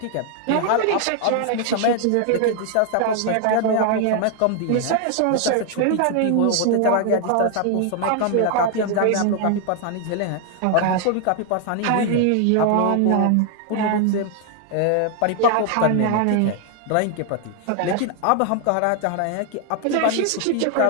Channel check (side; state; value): both; different; correlation 0.00